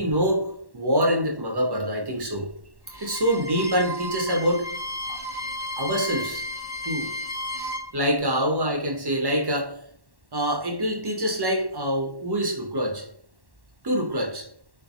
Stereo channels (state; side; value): late; left; 1.1 ms